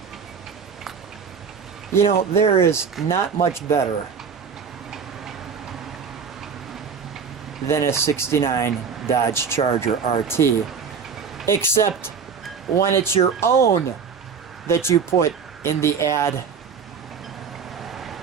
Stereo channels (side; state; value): left; quieter; 6.3 dB